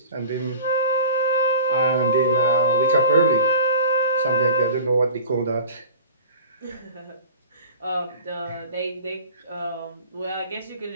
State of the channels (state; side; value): inverted; both; correlation -0.40